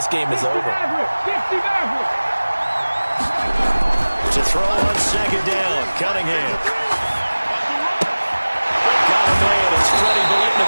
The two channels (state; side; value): inverted; both; correlation -1.00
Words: game is over. To throw on 2nd down, Cunningham. Got a man, it's Freddie